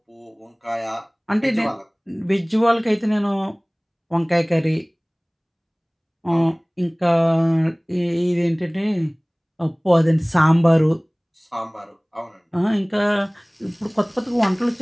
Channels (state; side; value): identical; both; correlation 1.00